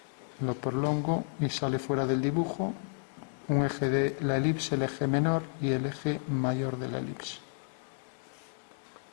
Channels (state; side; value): silent; right; 57 dB below the other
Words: Lo prolongo y sale fuera del dibujo un eje de la elipse, el eje menor y el eje mayor de la elipse.